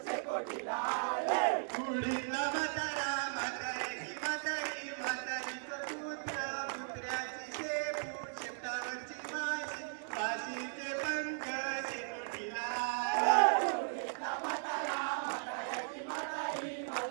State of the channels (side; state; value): left; silent; digital silence